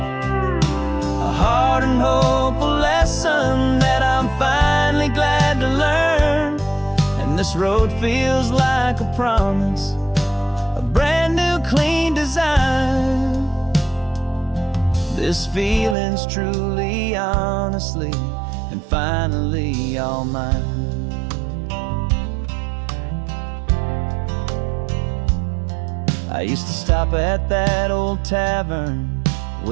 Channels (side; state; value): left; drops out; at 16.0 s